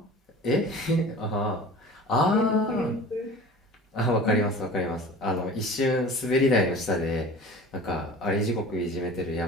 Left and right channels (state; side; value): normal; both; correlation 0.40